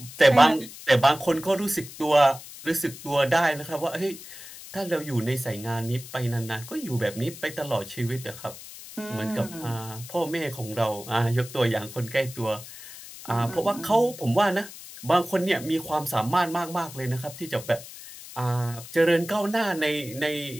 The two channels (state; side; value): noise; left; hiss, 15 dB below the sound